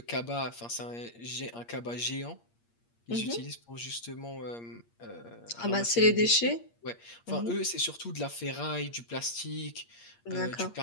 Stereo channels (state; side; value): late; right; 8.6 ms